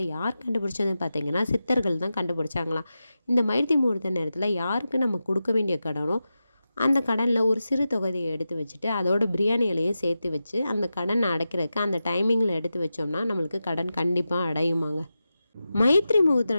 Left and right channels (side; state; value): both; inverted; correlation -0.92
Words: யார் கண்டுபிடிச்சதுன்னு பார்த்தீங்கன்னா சித்தர்கள் தான் கண்டுபிடிச்சாங்களாம். இந்த மைத்ரி முகூர்த்த நேரத்தில் யாருக்கு நம்ம கொடுக்க வேண்டிய கடனோ அந்த கடனில் ஒரு சிறு தொகையை எடுத்து வச்சுட்டு அதோட பிரியாணி இலையும் சேர்த்து வச்சு அந்த கடனை அடைக்கிறதுக்கு அந்த டைமிங்கில் எடுத்து வச்சோம்னா நம்மளுக்கு கடன் கண்டிப்பாக அடையுமாங்க. மைத்ரி